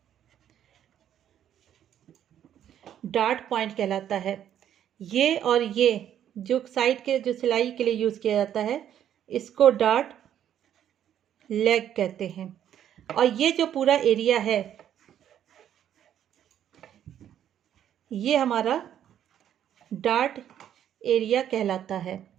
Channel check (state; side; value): quieter; left; 10.3 dB